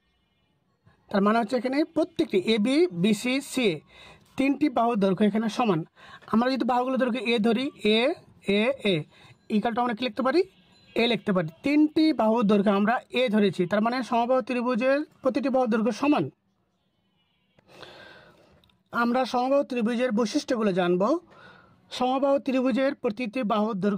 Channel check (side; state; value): both; identical; correlation 1.00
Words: তার মানে হচ্ছে এখানে প্রত্যেকটি এবি বিসি সিএ তিনটি বাহুর দৈর্ঘ্য এখানে সমান। আমরা যদি বাহুগুলো দৈর্ঘ্য এ ধরি, এ এ এ ইকালটা আমরা কি লিখতে পারি? এ লিখতে পারি। তিনটি বাহুর দৈর্ঘ্য আমরা এ ধরেছি, তার মানে সমবাহু ত্রিভুজের প্রতিটি বাহুর দৈর্ঘ্য সমান। আমরা সমবাহু ত্রিভুজের বৈশিষ্ট্যগুলো জানব। সমবাহু ত্রিভুজের প্রতিটি বাহুর